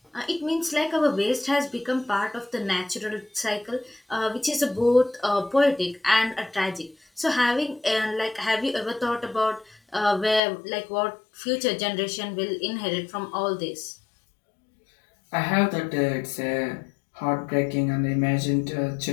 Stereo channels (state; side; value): drops out; right; at 10.4 s